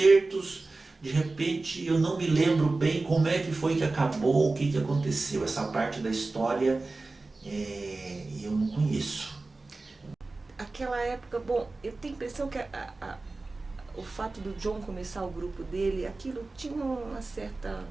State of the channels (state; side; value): quieter; left; 3.4 dB